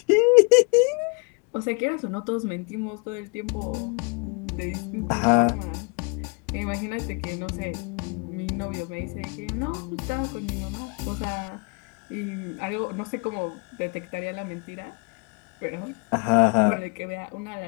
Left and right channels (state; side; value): quieter; right; 33.5 dB